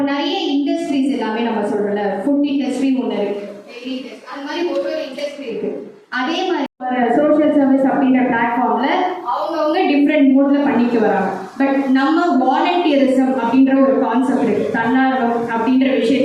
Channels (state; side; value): identical; both; correlation 1.00